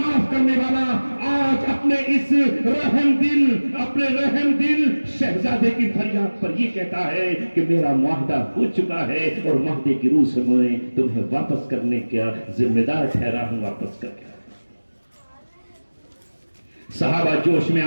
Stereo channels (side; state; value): both; inverted; correlation -1.00